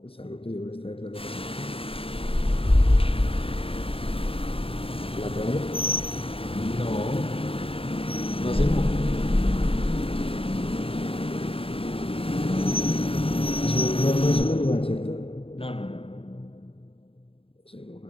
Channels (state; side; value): late; right; 0.27 ms